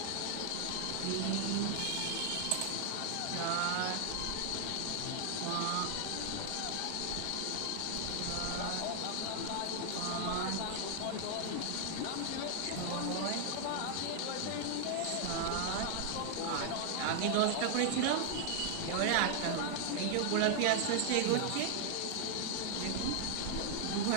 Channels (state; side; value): different; both; correlation 0.00